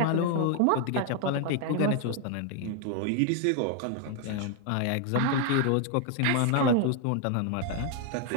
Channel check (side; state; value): both; different; correlation 0.00